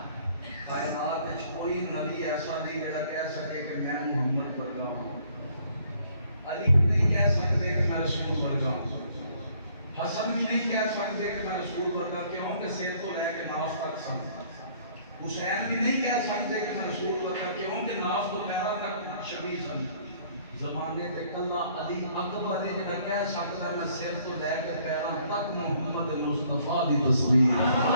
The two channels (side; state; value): both; inverted; correlation -0.61